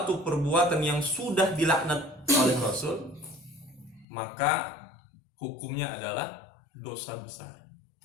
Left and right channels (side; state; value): right; drops out; at 4.0 s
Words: perbuatan yang sudah dilaknat oleh Rasul, maka hukumnya adalah dosa besar.